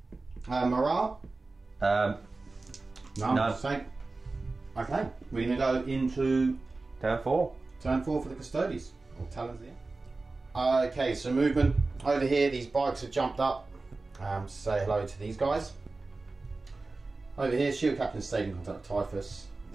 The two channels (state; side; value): quieter; left; 3.5 dB